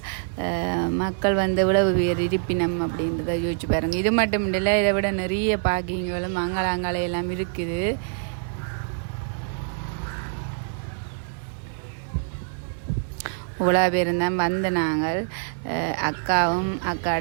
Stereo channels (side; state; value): left; silent; digital silence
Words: மக்கள் இவ்வளவு பேர் இருப்பினம் அப்படின்றத யோசிச்சு பாருங்கள். இது மட்டும் இல்லை, இதை விட நிறைய பார்க்கிங்களும் அங்காள எல்லாம் இருக்குது. இவ்வளோ பேர் தான் வந்த நாங்கள், அக்காவும்